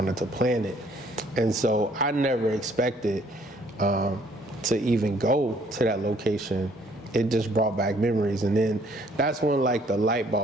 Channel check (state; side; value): normal; both; correlation 0.62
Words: to plan it. And so I never expected to even go to that location. It just brought back memories. And then that's when the light